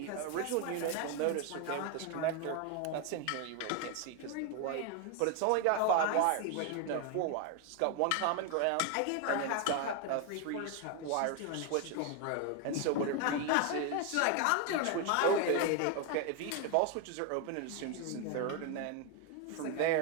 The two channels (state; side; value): different; both; correlation 0.01